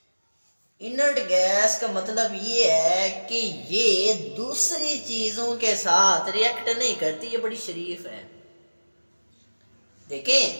इनर्ट गैस का मतलब ये है कि ये दूसरी चीजों के साथ रिएक्ट नहीं करती, ये बड़ी शरीफ है।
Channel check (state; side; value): inverted; both; correlation -1.00